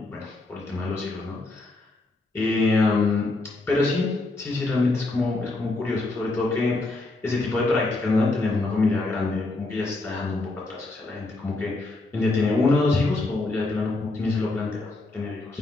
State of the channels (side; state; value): right; quieter; 3.1 dB